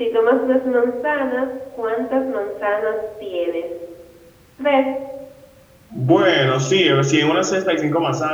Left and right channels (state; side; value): identical; both; correlation 1.00